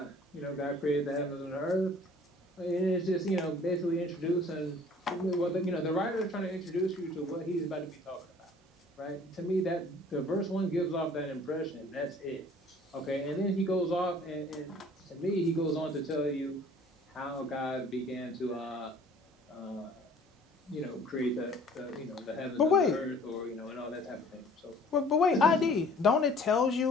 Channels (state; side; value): normal; both; correlation 0.52